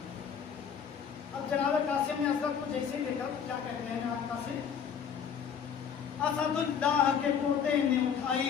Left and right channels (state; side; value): quieter; right; 7.4 dB